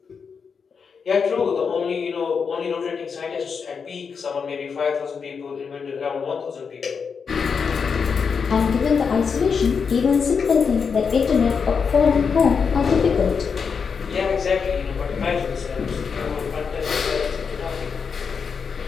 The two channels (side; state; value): right; quieter; 5.9 dB